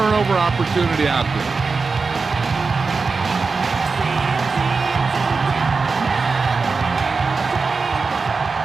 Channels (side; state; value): left; quieter; 4.5 dB